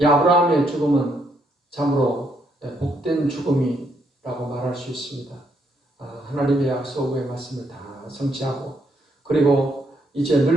이 아브라함의 죽음은 참으로 복된 죽음이라고 말할 수 있습니다. 하나님의 약속의 말씀을 다 성취하고 그리고 이제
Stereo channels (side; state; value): both; normal; correlation 0.74